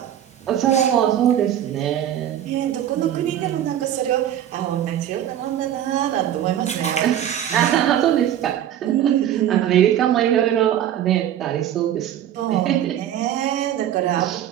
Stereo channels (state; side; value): quieter; left; 11.0 dB